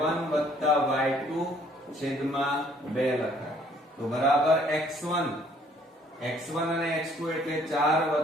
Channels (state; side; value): normal; both; correlation 0.61